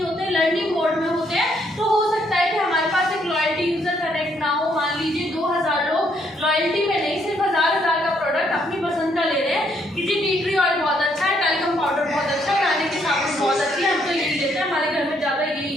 होते, लर्निंग मोड में होते हैं, तो हो सकता है कि हमारे पास एक लॉयल्टी यूजर कनेक्ट ना हो। मान लीजिए 2000 लोग लॉयल्टी में नहीं, सिर्फ 1000 का प्रोडक्ट अपनी पसंद का ले रहे हैं कि जी टी ट्री ऑयल बहुत अच्छा है, टैल्कम पाउडर बहुत अच्छा है, खाने की साबुन बहुत अच्छी है, हम तो यही लेते हैं, हमारे घर में ज्यादा यही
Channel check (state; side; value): normal; both; correlation 0.71